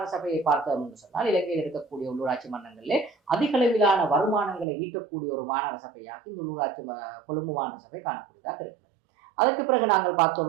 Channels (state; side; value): drops out; left; at 4.7 s